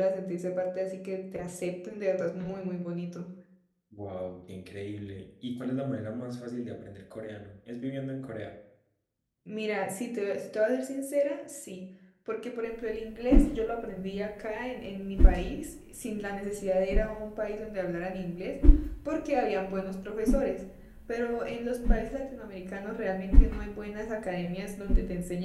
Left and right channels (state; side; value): identical; both; correlation 1.00